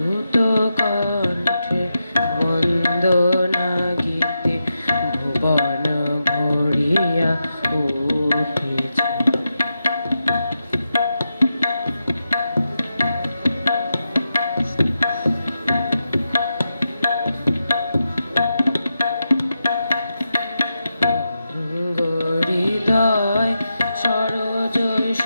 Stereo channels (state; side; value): inverted; both; correlation -0.88